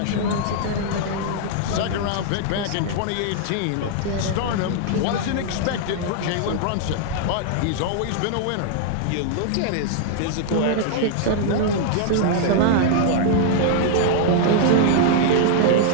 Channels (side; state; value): both; different; correlation -0.01